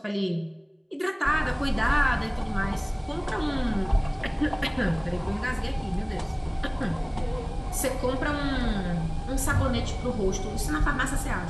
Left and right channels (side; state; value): both; identical; correlation 1.00